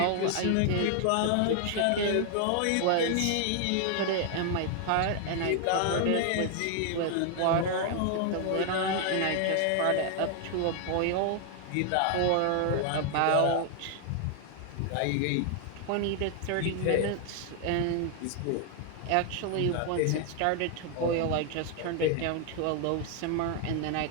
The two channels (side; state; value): both; different; correlation 0.00